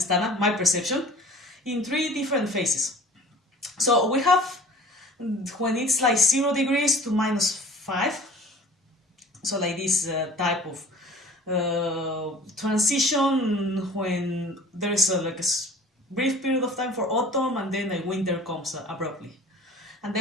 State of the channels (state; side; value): normal; both; correlation 0.46